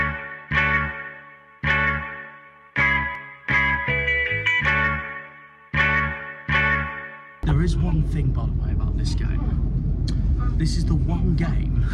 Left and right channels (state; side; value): identical; both; correlation 1.00